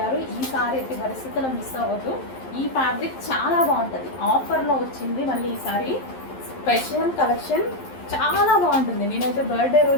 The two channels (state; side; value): late; right; 11 ms